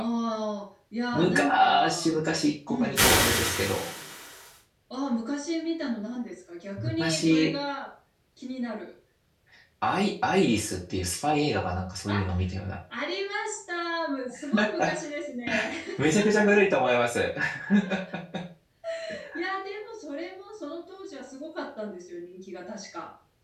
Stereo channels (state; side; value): identical; both; correlation 1.00